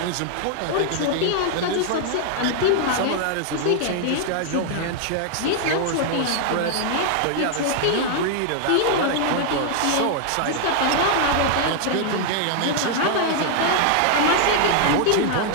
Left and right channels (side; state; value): both; different; correlation 0.00